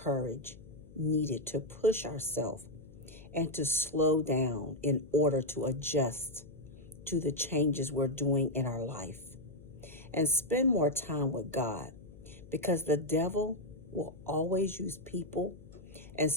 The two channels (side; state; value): left; noise; hum, 19 dB below the sound